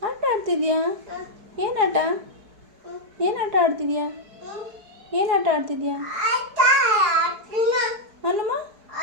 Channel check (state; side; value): late; left; 4.7 ms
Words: ಆಟ ಆಡ್ತಿದ್ಯಾ? ಏನು ಆಟ? ಏನು ಆಟ ಆಡ್ತಿದ್ಯಾ? ಏನು ಆಟ ಆಡ್ತಿದ್ಯಾ? ಅಲ್ಲಮ್ಮ